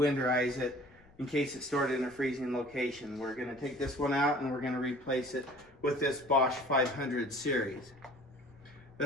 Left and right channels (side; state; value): left; noise; rumble, 28 dB below the sound